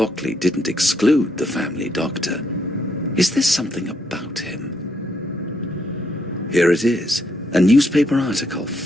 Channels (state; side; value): normal; both; correlation 0.74